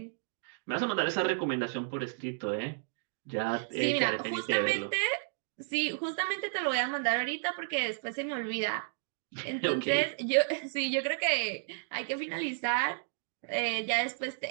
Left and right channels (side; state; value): left; silent; digital silence